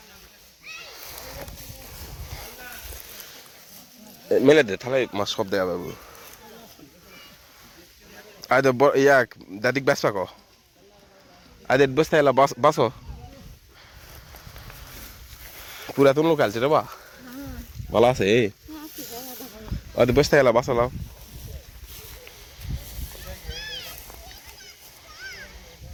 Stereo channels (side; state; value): both; identical; correlation 1.00